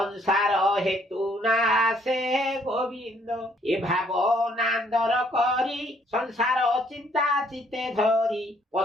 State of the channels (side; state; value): both; normal; correlation 0.65